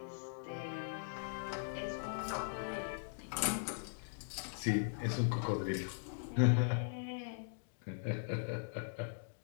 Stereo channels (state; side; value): silent; right; digital silence